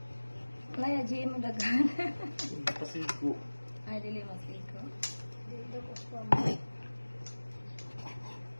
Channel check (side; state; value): both; inverted; correlation -1.00